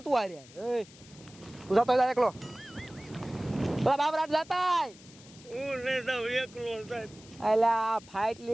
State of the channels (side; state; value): left; noise; hiss, 22 dB below the sound